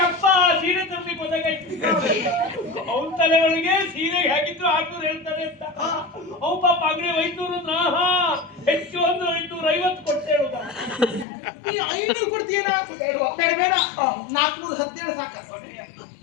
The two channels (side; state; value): right; drops out; at 11.2 s